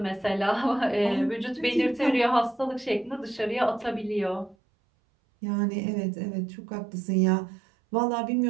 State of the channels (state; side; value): drops out; left; at 4.5 s